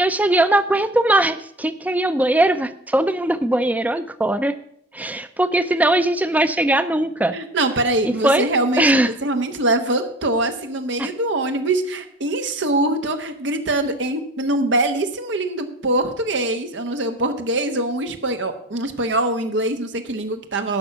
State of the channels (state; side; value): normal; both; correlation 0.40